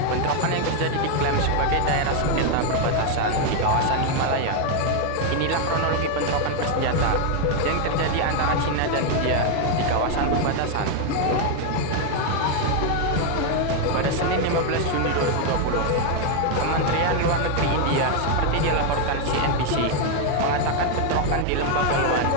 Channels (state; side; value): different; both; correlation 0.01